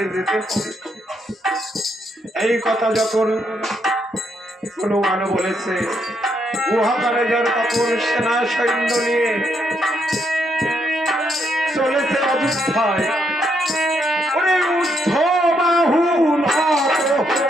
যেতে হবে। এই কথা যখন হনুমান বলেছে, গুহাকারে যার তখন সেনা সৈন্য নিয়ে চলেছে অযোধ্যায়। ওরে উদ্ধ বাহু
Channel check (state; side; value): normal; both; correlation 0.76